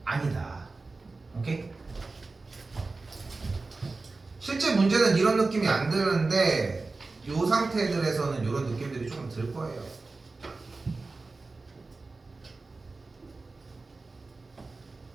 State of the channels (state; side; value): quieter; left; 3.7 dB